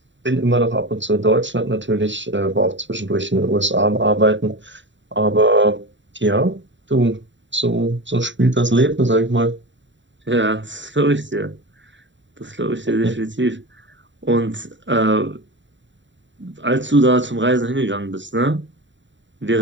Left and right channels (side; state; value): left; late; 0.54 ms